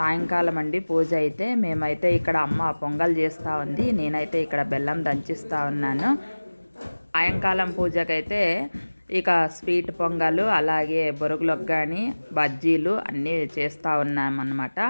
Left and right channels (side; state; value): both; inverted; correlation -1.00